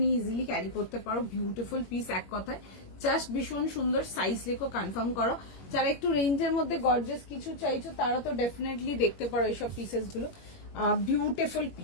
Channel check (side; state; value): right; late; 21 ms